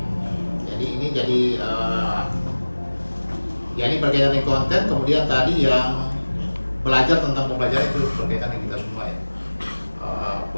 Jadi ini ini berkaitan dengan konten. Kemudian tadi yang belajar tentang pembelajaran itu berkaitan dengan kita semua ya.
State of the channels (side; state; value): both; inverted; correlation -1.00